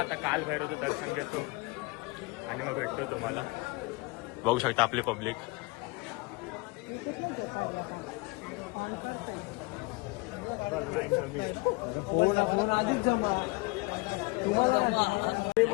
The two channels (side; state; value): right; quieter; 25.5 dB